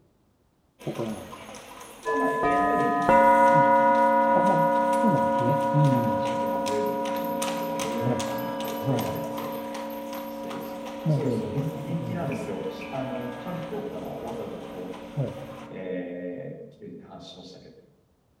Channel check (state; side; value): identical; both; correlation 1.00